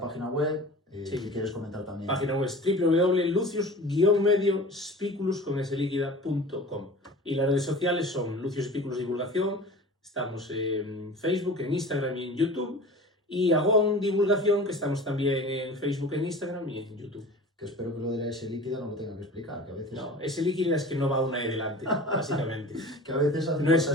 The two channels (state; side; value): normal; both; correlation 0.39